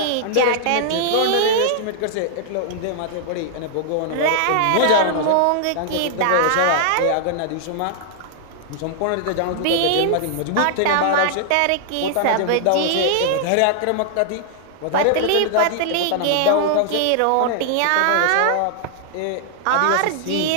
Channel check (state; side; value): different; both; correlation -0.01